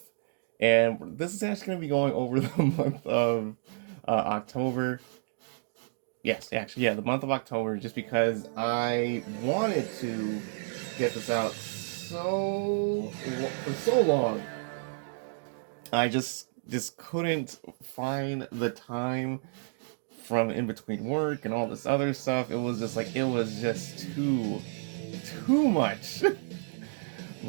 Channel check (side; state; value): left; silent; digital silence